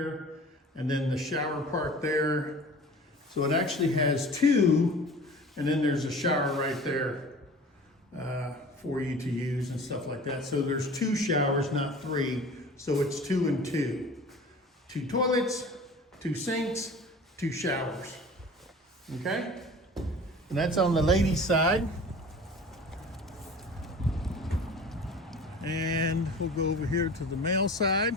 and then the shower part there. So it actually has 2, and then there's a shower right there for you to use and stuff like that. So there's 2 showers, not 3. So it's 2 and 2. 2 toilets, 2 sinks, 2 showers. Okay? And that's on the ladies' side. And we'll go over here to the male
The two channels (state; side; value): normal; both; correlation 0.41